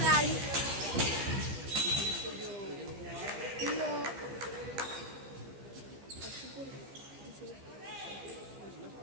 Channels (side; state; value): left; late; 15 ms